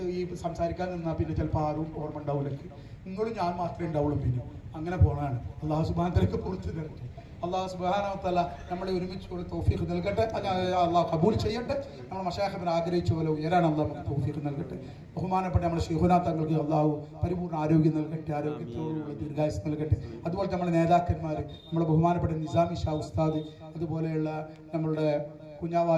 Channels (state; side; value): identical; both; correlation 1.00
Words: ഈ സംസാരിക്കാൻ നിന്നാൽ പിന്നെ ചിലപ്പോൾ ആരും ഓർമ്മ ഉണ്ടാവില്ല. നിങ്ങളും ഞാൻ മാത്രമേ ഉണ്ടാവുള്ളൂ. പിന്നെ അങ്ങനെ പോകണതാണ്. അള്ളാഹു സുബ്ഹാനഹു വ തആല പുറത്തു തരട്ടെ. അള്ളാഹു സുബ്ഹാനഹു വ തആല നമ്മളെ ഒരുമിച്ച് തൗഫീഖ് നൽകട്ടെ. അള്ളാഹു കബൂൽ ചെയ്യട്ടെ. നമ്മൾ മശായിഖിനെ ആഗ്രഹിച്ച പോലെ ഉയരാൻ അള്ളാഹു തൗഫീഖ് നൽകട്ടെ. ബഹുമാനപ്പെട്ട നമ്മുടെ ശൈഖുനാ തങ്ങൾക്ക് അള്ളാഹു പരിപൂർണ്ണ ആരോഗ്യം നൽകട്ടെ, ആരോഗ്യത്തോടുള്ള ദീർഘായുസ് നൽകട്ടെ. അതുപോലെ നമ്മുടെ നേതാക്കന്മാർ, നമ്മുടെ ബഹുമാനപ്പെട്ട നിസാമി ഷാ ഉസ്താദ്, അതുപോലെയുള്ള നമ്മളുടെ